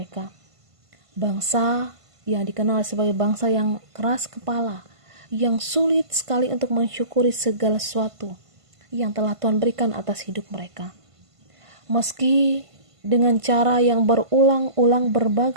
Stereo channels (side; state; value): left; late; 1.5 ms